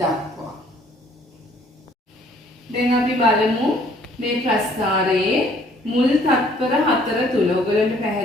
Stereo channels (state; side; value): normal; both; correlation 0.60